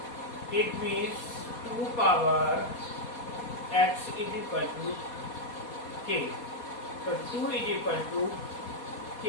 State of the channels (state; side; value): late; right; 4.2 ms